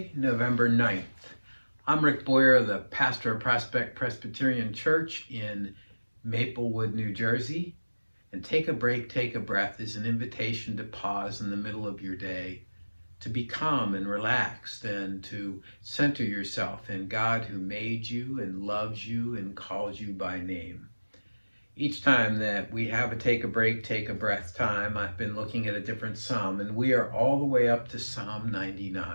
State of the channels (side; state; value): both; inverted; correlation -1.00